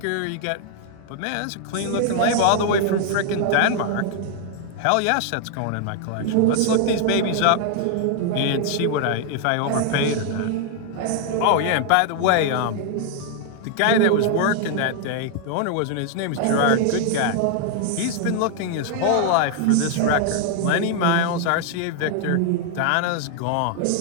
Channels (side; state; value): both; different; correlation 0.00